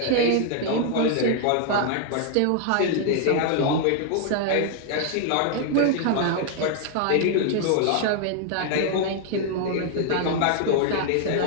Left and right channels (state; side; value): different; both; correlation 0.00